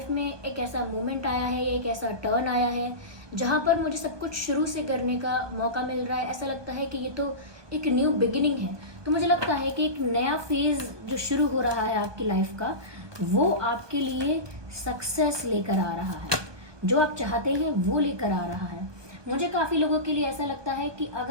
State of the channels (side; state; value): left; late; 1.2 ms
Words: में एक ऐसा मोमेंट आया है या एक ऐसा टर्न आया है जहाँ पर मुझे सब कुछ शुरू से करने का मौका मिल रहा है। ऐसा लगता है कि ये तो एक न्यू बिगिनिंग है। तो मुझे लगता है कि एक नया फेज जो शुरू हो रहा है आपकी लाइफ का, वो आपके लिए सक्सेस लेकर आ रहा है, जो आप चाहते हैं वो लेकर आ रहा है। मुझे काफ़ी लोगों के लिए ऐसा लगता है कि